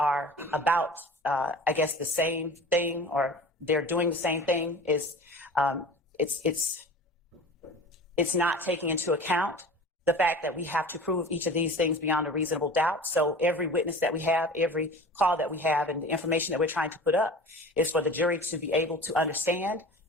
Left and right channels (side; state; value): both; normal; correlation 0.38